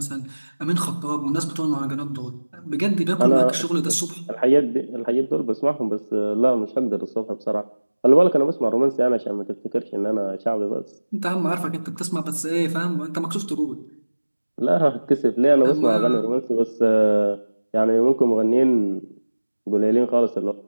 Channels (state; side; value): inverted; both; correlation -1.00